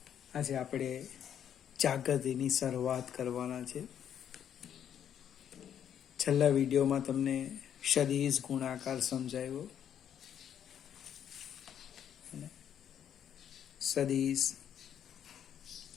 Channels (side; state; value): right; quieter; 9.3 dB